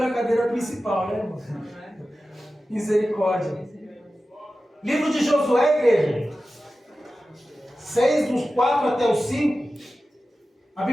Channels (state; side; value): normal; both; correlation 0.94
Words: cadeira principal, né, irmão? Misericórdia. Livro de Josué, igreja. 6, dos 4 até os 5. A